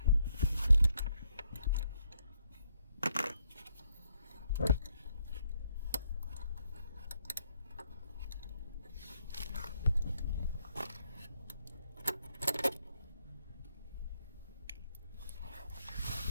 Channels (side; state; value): both; inverted; correlation -0.73